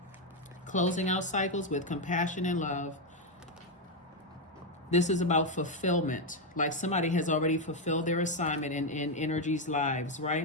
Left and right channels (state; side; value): normal; both; correlation 0.04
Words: Closing out cycles with compassion and love. This is about fulfillment. Like somebody has already fulfilled their assignment in energy's lives,